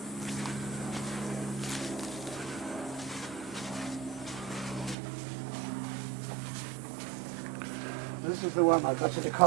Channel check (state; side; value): drops out; left; at 5.0 s